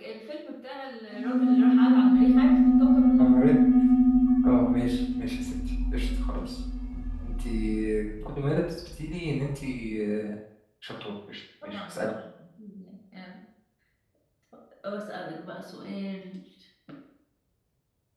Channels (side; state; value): both; identical; correlation 1.00